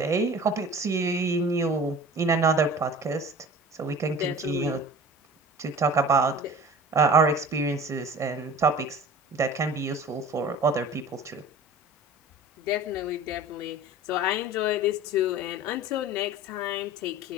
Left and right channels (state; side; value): normal; both; correlation 0.41